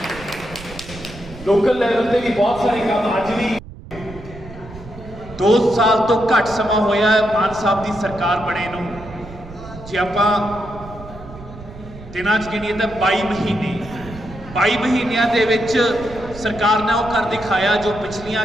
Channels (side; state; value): right; noise; rumble, 16 dB below the sound